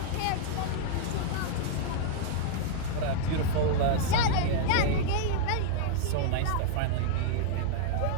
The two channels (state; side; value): different; both; correlation 0.00